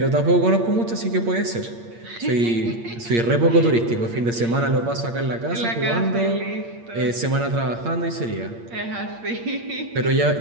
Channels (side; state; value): left; late; 8.6 ms